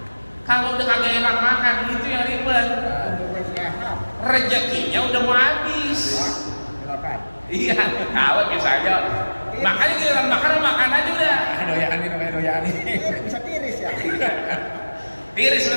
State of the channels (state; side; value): inverted; both; correlation -1.00